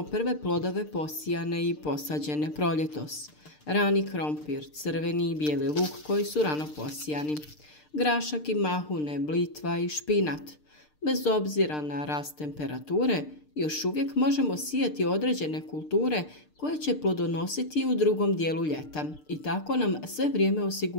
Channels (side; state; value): right; late; 6.6 ms